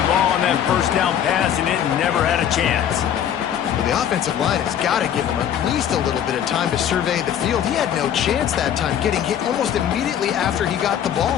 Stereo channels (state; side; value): quieter; right; 9.6 dB